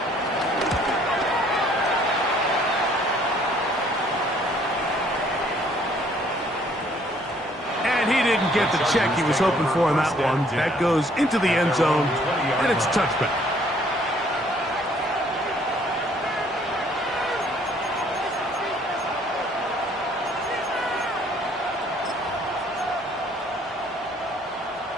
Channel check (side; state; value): both; normal; correlation 0.61